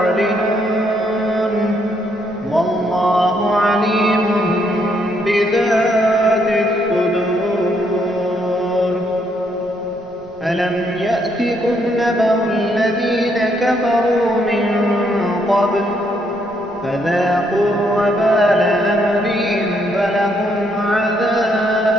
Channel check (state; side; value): noise; left; rumble, 27 dB below the sound